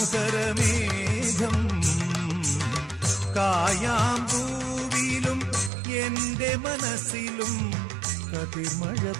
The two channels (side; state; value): left; drops out; at 5.7 s